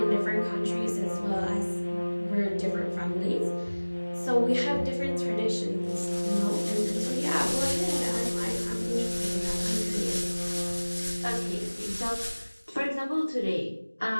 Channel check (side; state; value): both; inverted; correlation -1.00